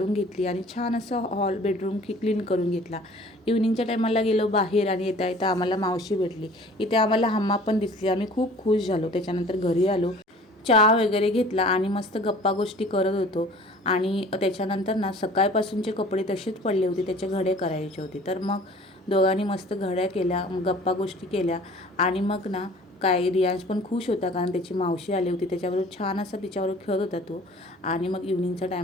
घेतली आणि छान असं हॉल बेडरूम क्लीन करून घेतला. इव्हनिंगच्या टायमाला गेलो बाहेर आणि येता येता आम्हाला मावशी भेटली. इथे आम्हाला हम्मा पण दिसली. आम्ही खूप खुश झालो. त्याच्यानंतर घरी आलो, चहा वगैरे घेतला आणि मस्त गप्पा गोष्टी करत होतो. आणि त्याच्यानंतर ना सकाळपासूनचे कपडे तसेच पडले होते, त्याचे घडे करायचे होते. तर मग दोघांनी मस्त घड्या केल्या, गप्पा गोष्टी केल्या. आणि मग ना काय रियांश पण खुश होता, कारण त्याची मावशी आली होती. त्याच्याबरोबर छान असा तिच्याबरोबर खेळत होता तो. आणि मग इव्हनिंगचा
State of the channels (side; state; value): both; normal; correlation 0.48